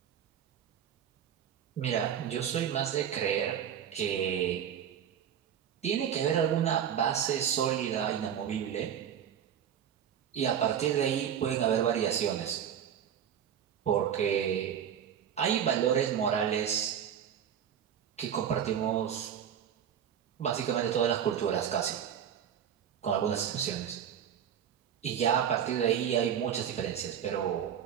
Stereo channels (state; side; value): quieter; left; 9.0 dB